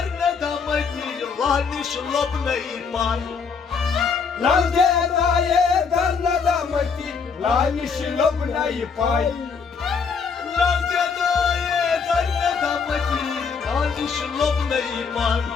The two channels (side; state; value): right; quieter; 5.6 dB